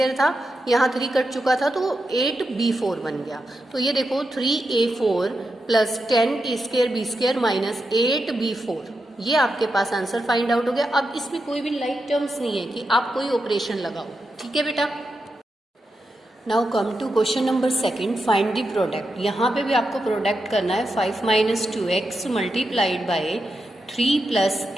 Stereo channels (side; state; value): both; normal; correlation 0.87